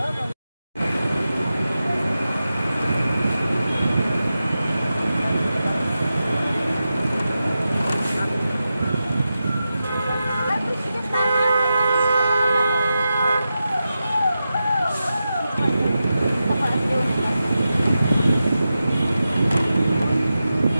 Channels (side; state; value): both; inverted; correlation -0.91